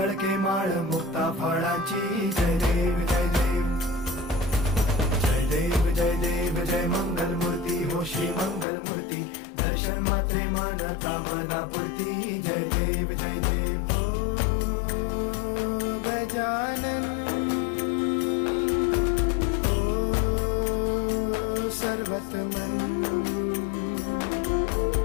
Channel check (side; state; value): right; drops out; at 8.7 s